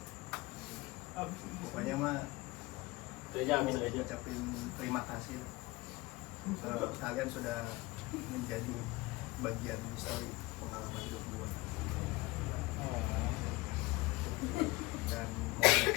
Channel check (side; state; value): right; quieter; 21.5 dB